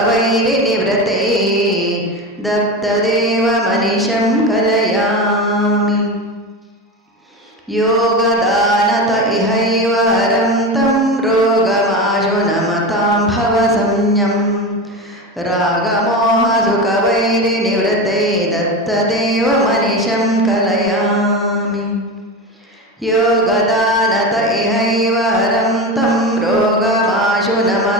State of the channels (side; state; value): both; normal; correlation 0.23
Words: दत्तदेवमनिशं कलयामि योगदानत इहैव हरं तं रोगमाशु नमतां भवसंज्ञं रागमोहसुखवैरिनिवृत्तै दत्तदेवमनिशं कलयामि योगदानत इहैव हरं तं रोगमाशु